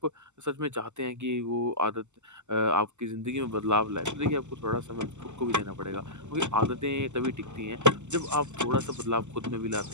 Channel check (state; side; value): late; left; 0.83 ms